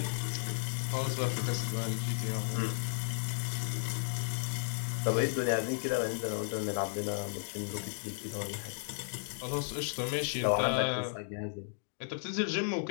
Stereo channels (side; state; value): right; silent; digital silence